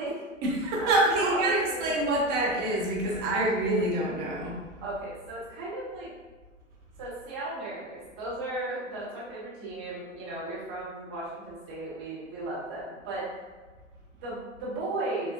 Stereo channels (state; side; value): normal; both; correlation 0.22